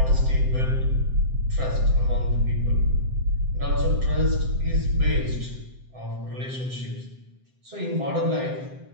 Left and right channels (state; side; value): late; left; 7.7 ms